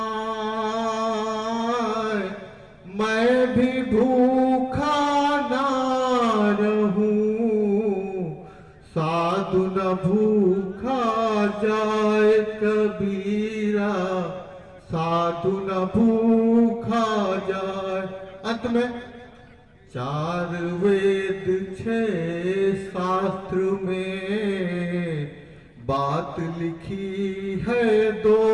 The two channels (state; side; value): identical; both; correlation 1.00